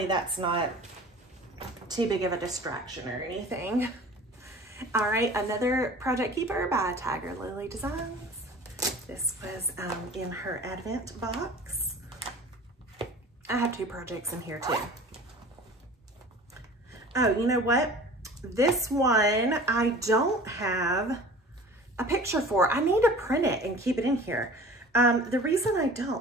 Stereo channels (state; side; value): normal; both; correlation 0.43